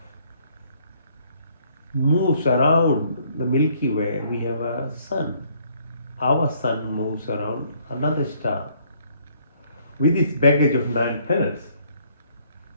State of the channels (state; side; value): inverted; both; correlation -0.65